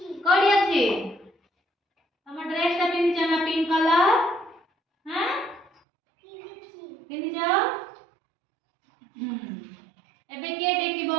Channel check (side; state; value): left; drops out; at 5.7 s